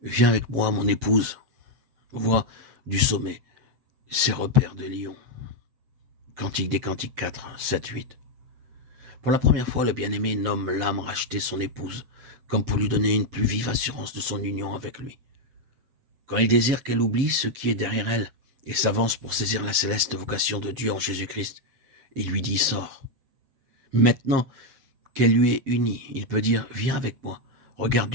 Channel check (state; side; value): late; left; 7.9 ms